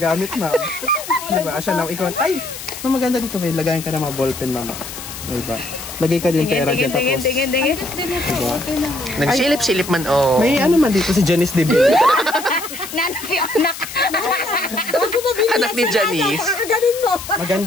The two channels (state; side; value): noise; left; hiss, 11 dB below the sound